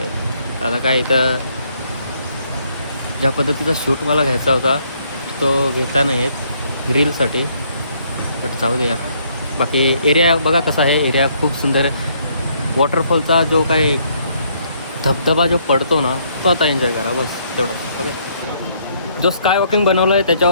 आहे. आता काय इथं ज्या पद्धतीचा शूट मला घ्यायचा होता तो घेता नाही येत रीलसाठी, बट जाऊ दे यार. बाकी एरिया बघा कसा आहे, एरिया खूप सुंदर आहे. वॉटरफॉलचा जो काही धबधबा जो पडतो ना, तो आता एन्जॉय करा बस तेवढा. ओके, जो स्काय वॉकिंग बनवलं आहे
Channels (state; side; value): inverted; both; correlation -0.69